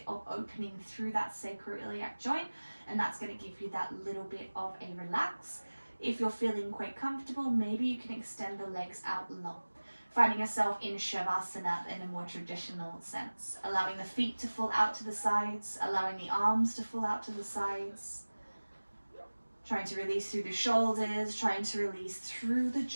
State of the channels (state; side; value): inverted; both; correlation -1.00